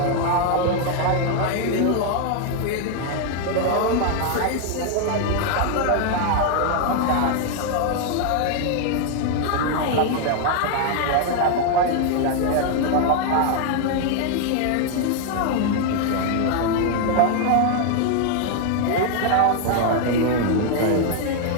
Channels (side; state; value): both; different; correlation 0.00